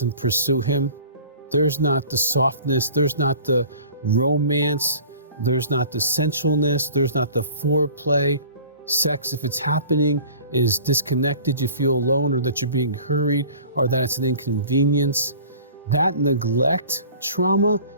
pursue him. There's not the softness. There's not the romance. There's not the sensualness. There's not the foreplay. Sex, if it's happening, is disconnected. You feel alone, or that you're being hurried, or that it's an inconvenience. That neglect trauma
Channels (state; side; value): inverted; both; correlation -0.46